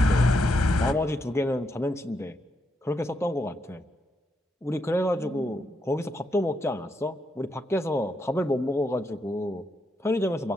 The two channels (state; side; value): normal; both; correlation 0.81